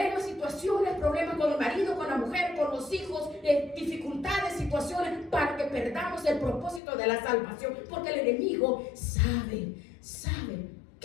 situaciones, problemas con el marido, con la mujer, con los hijos, dificultades, situaciones, para que perdamos el propósito de la salvación, porque el enemigo sabe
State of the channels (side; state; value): right; drops out; at 6.8 s